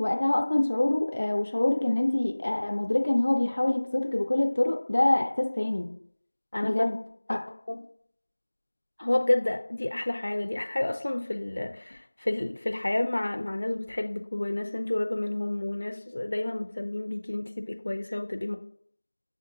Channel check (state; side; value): inverted; both; correlation -1.00